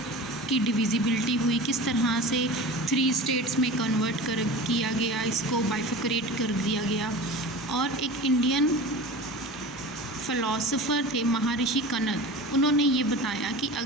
की डिविजिबिलिटी हुई, किस तरह से 3 स्टेट्स में कन्वर्ट किया गया, इसको बाइफिकरेट कर दिया गया। और एक इंडियन फ़िलासफ़र थे महर्षि कनद, उन्होंने ये बताया कि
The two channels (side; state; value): both; normal; correlation 0.34